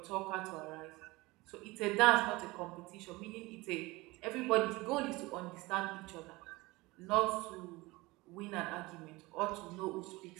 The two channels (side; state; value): left; quieter; 21.9 dB